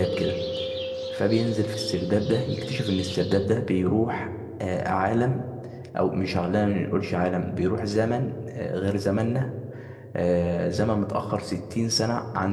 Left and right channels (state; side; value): identical; both; correlation 1.00